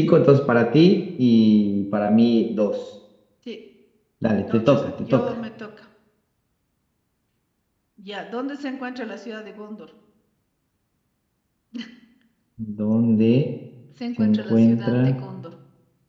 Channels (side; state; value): both; identical; correlation 1.00